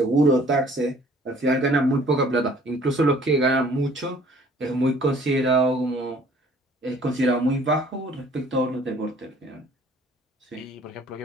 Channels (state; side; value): normal; both; correlation 0.55